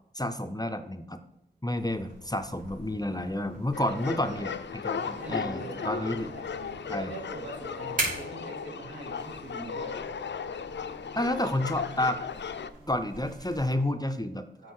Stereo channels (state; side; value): normal; both; correlation 0.49